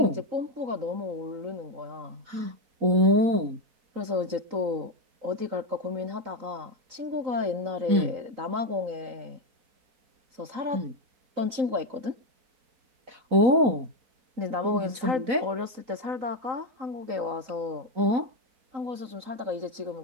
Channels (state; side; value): late; left; 3.9 ms